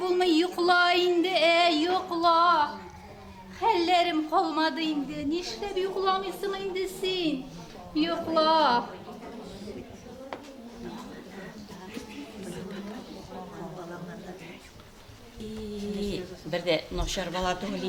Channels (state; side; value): identical; both; correlation 1.00